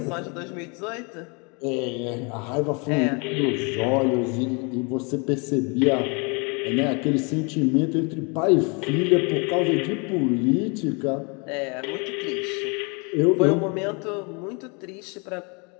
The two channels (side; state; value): right; quieter; 32.6 dB